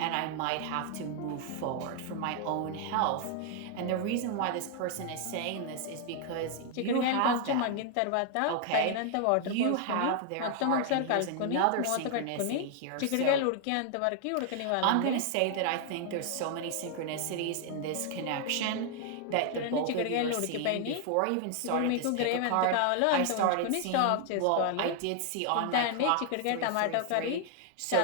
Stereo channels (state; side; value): different; both; correlation 0.00